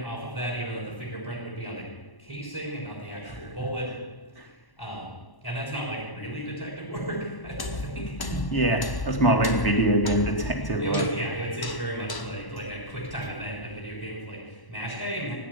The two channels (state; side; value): late; right; 1.1 ms